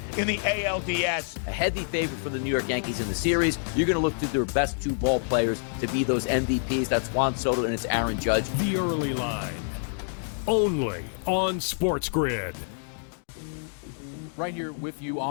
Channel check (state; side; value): silent; right; digital silence